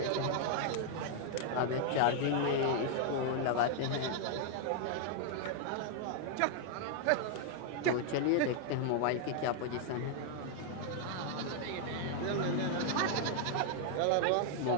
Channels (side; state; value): both; different; correlation 0.00